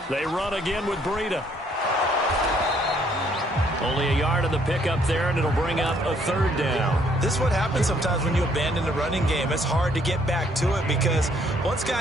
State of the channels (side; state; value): both; normal; correlation 0.66